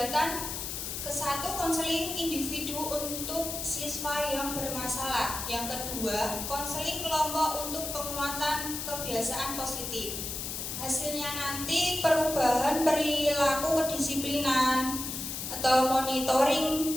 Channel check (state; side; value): noise; left; hiss, 5 dB below the sound